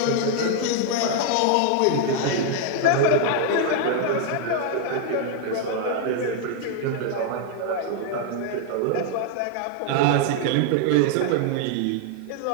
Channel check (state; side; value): different; both; correlation 0.00